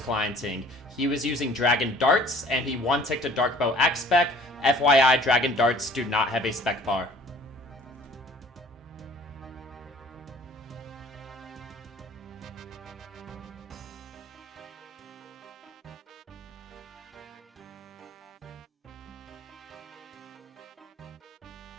He was using Dragon Darts, and he one-ticked a Darkbow Axe spec. FYI, Dragon Darts do not have a spec bar.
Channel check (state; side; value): normal; both; correlation 0.52